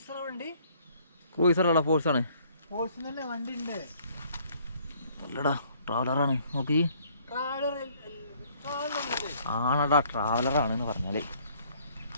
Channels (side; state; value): both; inverted; correlation -0.61